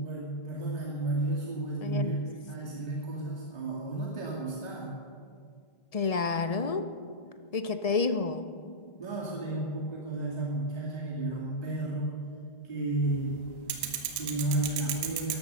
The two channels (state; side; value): late; right; 1.1 ms